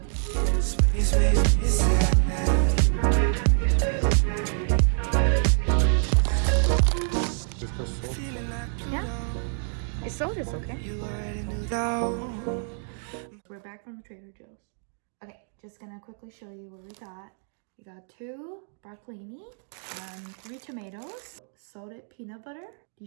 Just go salt. Yeah, it's sold, it's okay. We're back from Trader Joe's. Okay, just gonna quickly show you what we got. We got 2 broccolini, 3 tomatoes, salted peanut butter,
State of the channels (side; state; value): left; silent; 60 dB below the other